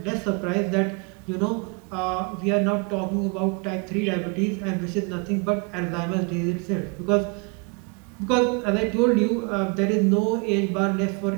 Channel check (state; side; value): quieter; left; 33.4 dB